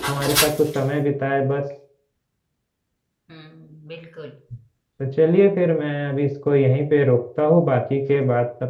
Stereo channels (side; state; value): both; identical; correlation 1.00